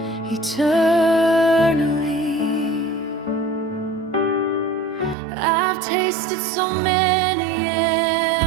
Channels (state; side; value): drops out; left; at 5.2 s